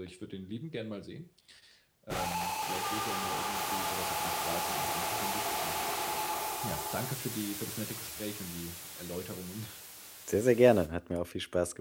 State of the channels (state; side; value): identical; both; correlation 1.00